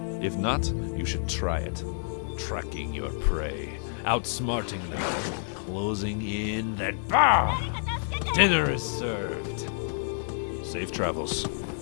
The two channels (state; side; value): silent; right; digital silence